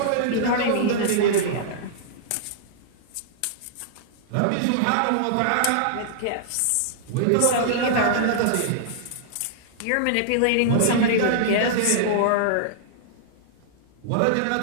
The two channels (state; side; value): different; both; correlation -0.01